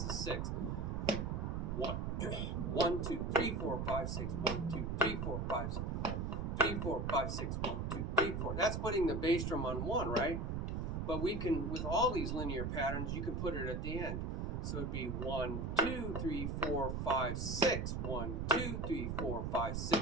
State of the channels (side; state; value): right; noise; rumble, 1 dB below the sound